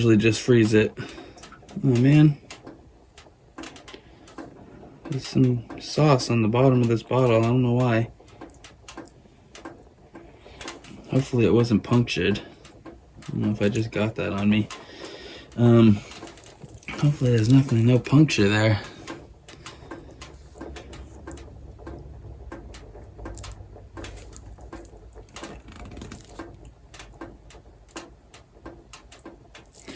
freeze it. Oh man, there's some sauce on the bottom of this bottle. I don't know why. Hopefully it wasn't punctured. I don't know if I just got that on me. Hopefully there's no puncture there.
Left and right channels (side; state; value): both; identical; correlation 1.00